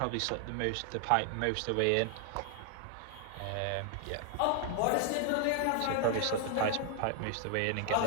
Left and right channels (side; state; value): both; different; correlation 0.00